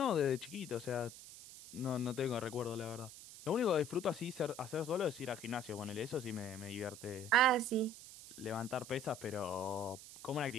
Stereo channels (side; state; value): right; noise; hiss, 15 dB below the sound